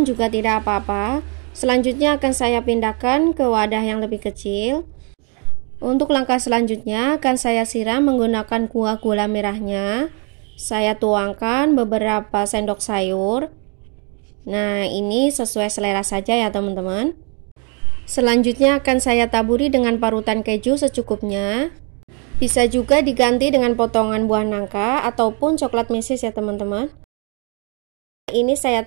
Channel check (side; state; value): left; quieter; 37.1 dB